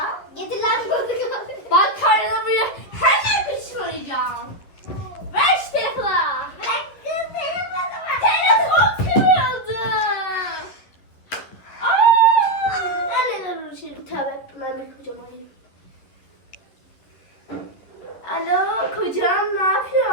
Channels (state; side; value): late; right; 11 ms